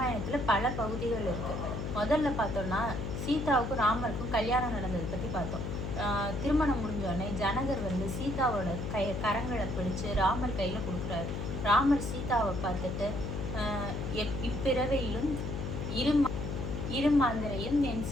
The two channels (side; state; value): left; noise; hum, 4 dB below the sound